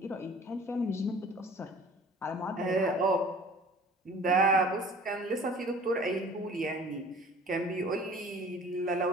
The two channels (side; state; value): both; normal; correlation 0.48